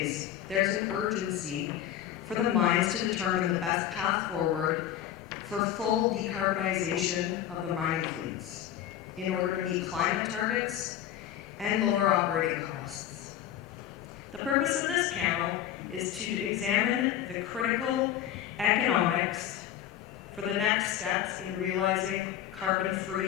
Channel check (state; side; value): quieter; right; 11.3 dB